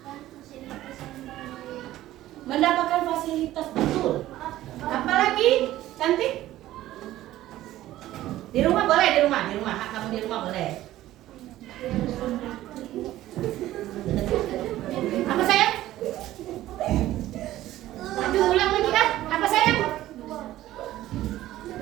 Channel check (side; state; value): left; quieter; 14.7 dB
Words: Mendapatkan fasilitas, betul. Apalagi cantik? Di rumah boleh, di rumah. Hak kamu di rumah boleh. Apa sayang? Aduh, ulang lagi kan? Apa sayang?